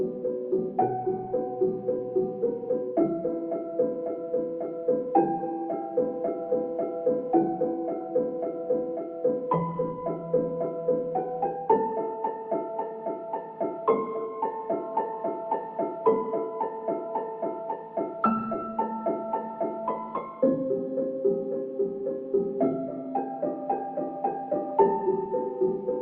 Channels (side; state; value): both; identical; correlation 1.00